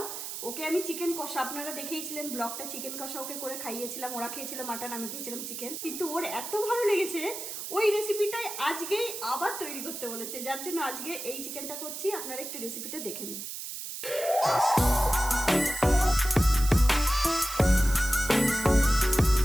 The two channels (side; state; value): right; noise; hiss, 7 dB below the sound